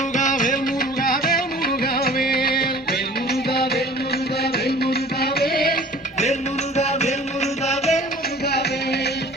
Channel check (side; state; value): both; normal; correlation 0.46